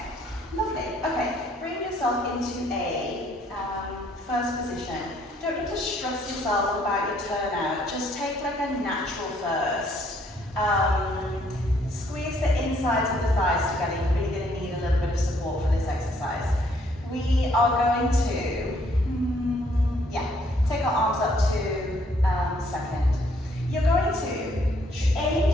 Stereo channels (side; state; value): both; normal; correlation 0.66